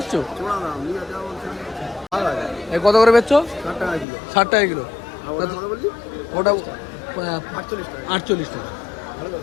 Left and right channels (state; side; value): drops out; right; at 4.0 s